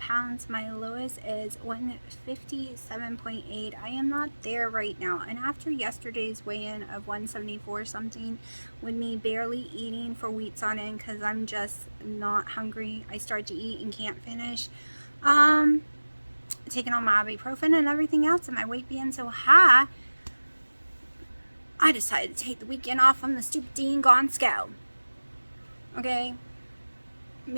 My lowest is 157.8. I am not there right now. And after yesterday's weigh-in of 174 something, with me barely eating for weeks on end because I'm just not hungry, I start to eat and can't finish. Taking on my ibuprofen and everything else, and my weight being so high, I decided to take the weekend off on the stupid dang gone scale. Okay?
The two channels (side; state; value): both; inverted; correlation -1.00